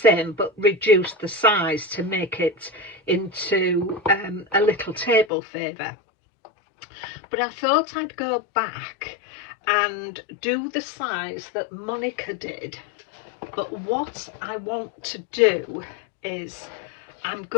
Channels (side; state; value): right; drops out; at 5.2 s